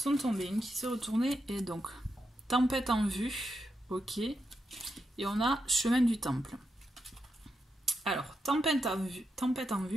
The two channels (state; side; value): normal; both; correlation 0.85